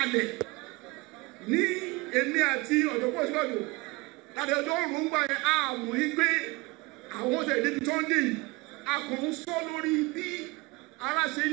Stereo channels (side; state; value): left; quieter; 24.0 dB